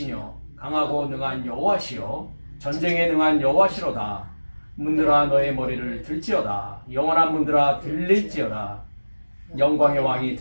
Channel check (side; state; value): both; inverted; correlation -1.00